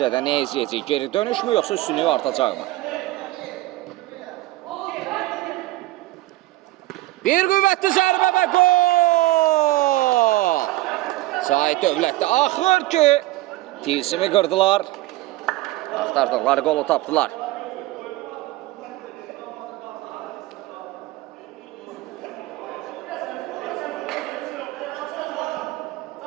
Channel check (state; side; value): quieter; left; 18.0 dB